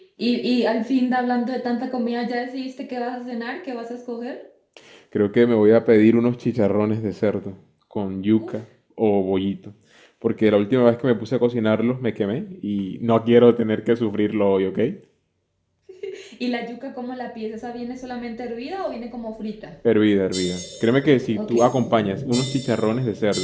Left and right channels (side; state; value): both; identical; correlation 1.00